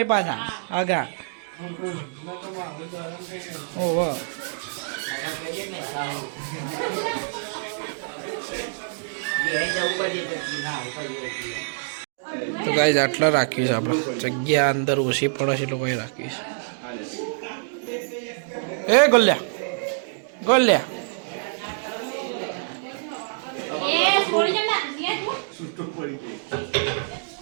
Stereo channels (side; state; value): left; silent; digital silence